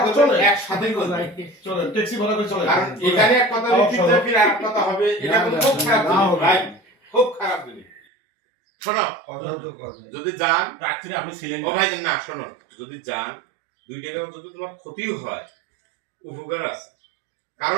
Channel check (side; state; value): left; drops out; at 8.0 s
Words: চলে একসাথেই বলবো চলে ট্যাক্সি ভাড়া করে চলে কারণ এখানে এক কথা লিখিত ফির আরেক কথা হবে এটা কিন্তু খুব খারাপ জিনিস ভাই খুব খারাপ জিনিস শোনো যদি যান রাত্রে আপনি ছিলেন ও ভাই না শোনো যদি যান দুই টাকা যদি তোমার ক্ষতিও হয় উপকার আছে